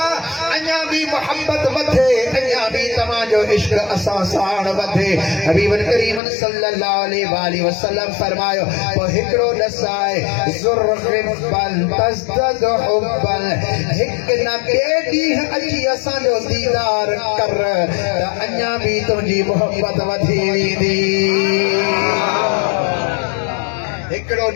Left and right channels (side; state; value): right; drops out; at 6.2 s